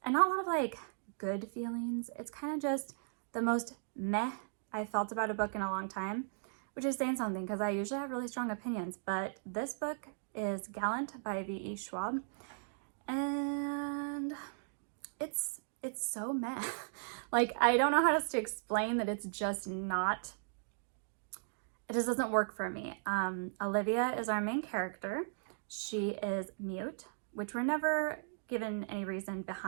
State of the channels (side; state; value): left; silent; digital silence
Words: and not a lot of like good feelings. It's kind of just the most meh I felt about a book in a long time, which is saying something because I usually have really strong opinions, but this book is Gallant by V.E. Schwab, and it's so meh. Like, I don't know how else to explain that. It's just not, it just doesn't work for me. Olivia is our main character. She is mute, which we're never given any reason